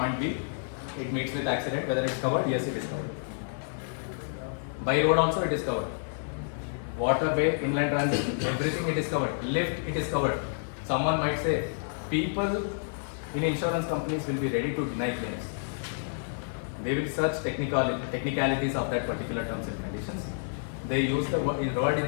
B, it meets with accident, whether it's covered, yes it is covered. By road also it is covered. Waterway, inland transit, everything it is covered. Lift, it is covered. Someone might say, people in insurance companies will be ready to deny claims. They will search technicalities of that particular terms and conditions. They use the word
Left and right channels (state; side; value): silent; right; 58 dB below the other